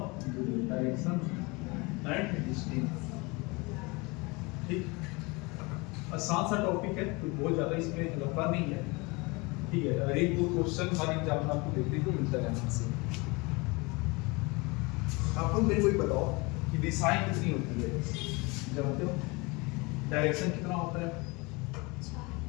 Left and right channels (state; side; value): quieter; right; 26.4 dB